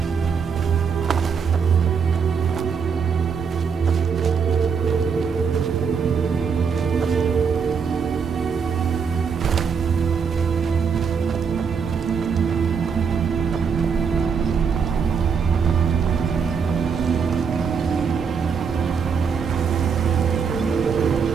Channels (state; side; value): quieter; left; 6.2 dB